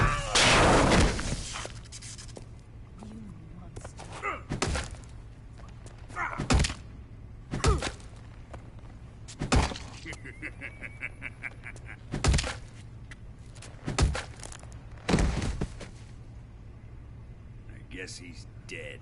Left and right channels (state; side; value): identical; both; correlation 1.00